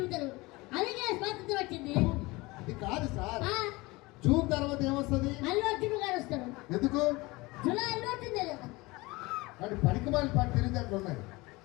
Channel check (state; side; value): quieter; right; 22.7 dB